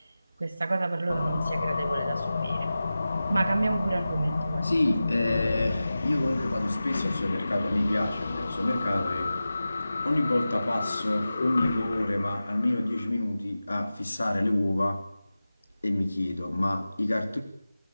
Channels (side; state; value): both; inverted; correlation -0.95